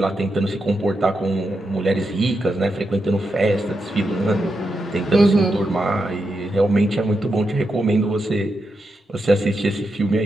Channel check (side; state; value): both; normal; correlation 0.86